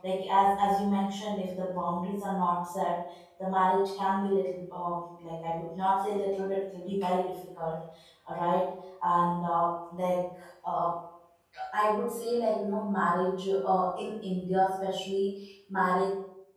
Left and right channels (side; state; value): both; identical; correlation 1.00